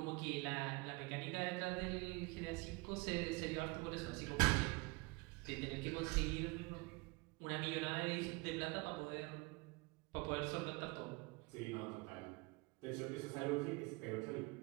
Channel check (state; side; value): quieter; left; 26.3 dB